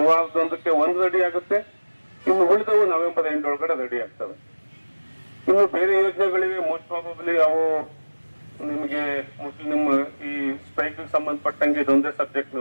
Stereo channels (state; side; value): inverted; both; correlation -1.00